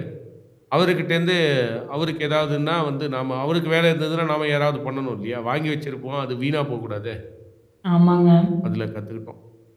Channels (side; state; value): both; identical; correlation 1.00